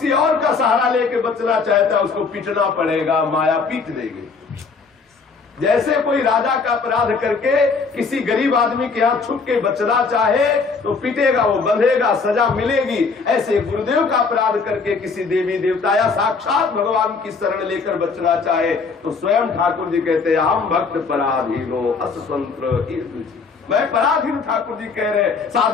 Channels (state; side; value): quieter; right; 4.7 dB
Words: और का सहारा लेके बचना चाहता है, उसको पीटना पड़ेगा, माया पीट देगी। जैसे कोई राजा का अपराध करके किसी गरीब आदमी के हाथ छुप के बचना चाहे तो पीटेगा, वो बंधेगा, सजा मिलेगी। ऐसे गुरुदेव का अपराध करके किसी देवी देवता या साक्षात भगवान की शरण लेकर बचना चाहे तो स्वयं ठाकुर जी कहते हैं, हम भक्त पराधीनो अस्वतंत्र। मैं पराधीन, ठाकुर जी कह रहे,